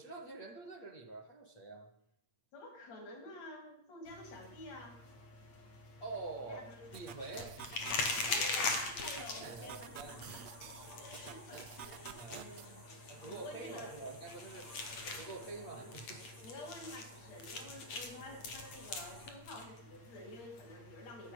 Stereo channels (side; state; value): right; late; 8.6 ms